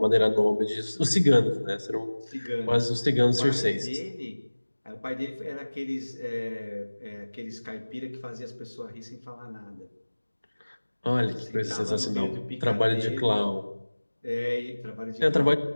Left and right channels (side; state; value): both; inverted; correlation -1.00